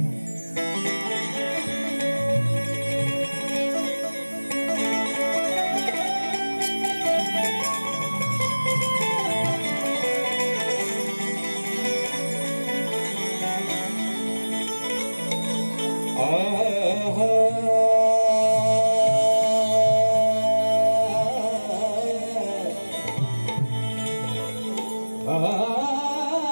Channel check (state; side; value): inverted; both; correlation -1.00